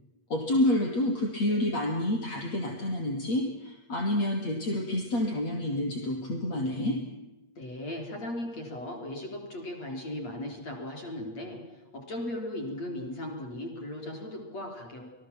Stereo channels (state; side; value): late; right; 8.4 ms